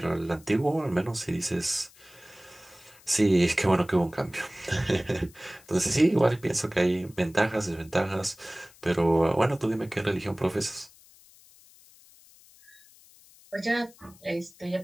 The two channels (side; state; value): left; noise; hiss, 25 dB below the sound